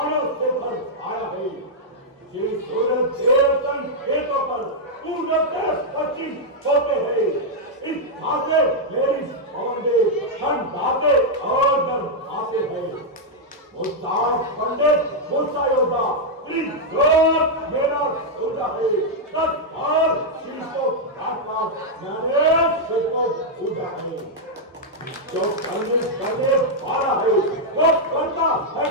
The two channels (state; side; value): normal; both; correlation -0.04